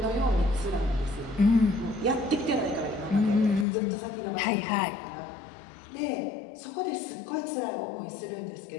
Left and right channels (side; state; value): right; drops out; at 3.7 s